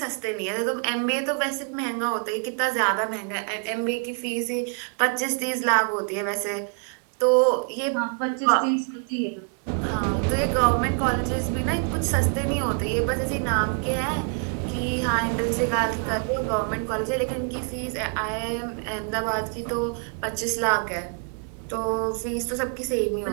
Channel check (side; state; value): left; quieter; 39.7 dB